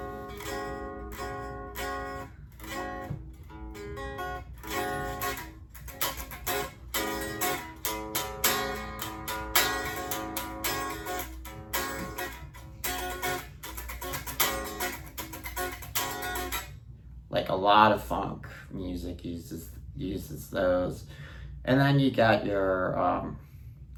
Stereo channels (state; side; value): identical; both; correlation 1.00